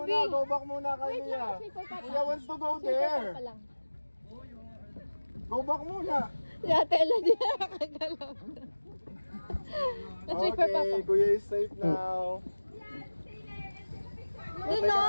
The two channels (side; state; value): both; inverted; correlation -1.00